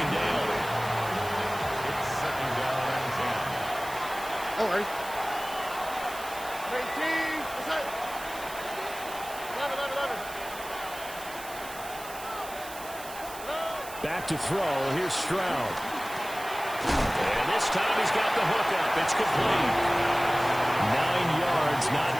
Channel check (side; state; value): right; noise; hiss, 14 dB below the sound